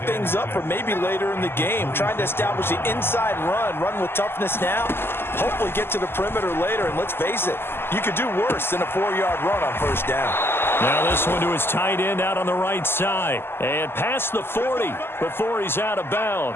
up for maybe later in the game, trying to establish the inside run with toughness now, hopefully get to the perimeter later. And let's face it, you could do worse than a 4-yard run on first down. Now this one to his tight end out on the right side. And past the 40 before he's out of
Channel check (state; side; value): late; right; 0.11 ms